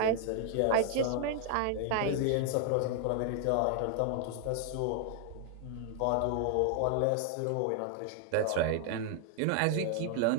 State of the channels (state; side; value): different; both; correlation 0.00